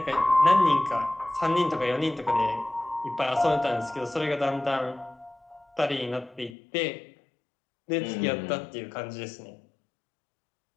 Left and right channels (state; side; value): drops out; right; at 6.6 s